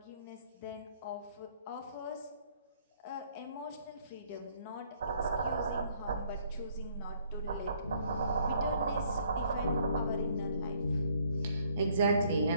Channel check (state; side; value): inverted; both; correlation -0.64